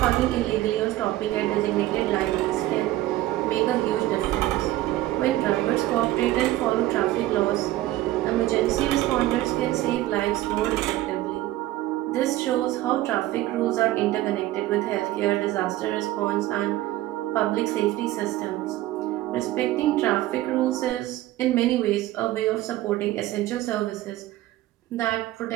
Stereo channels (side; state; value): left; quieter; 15.7 dB